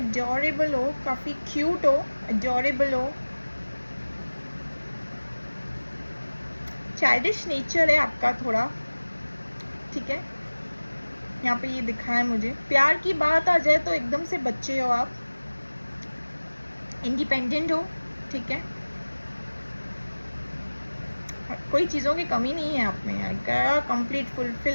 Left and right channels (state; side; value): inverted; both; correlation -1.00